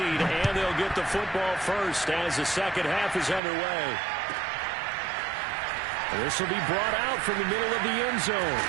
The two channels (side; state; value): left; drops out; at 3.4 s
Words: and they'll get the football first as the second half is underway. This will be brought out from the middle of the end zone.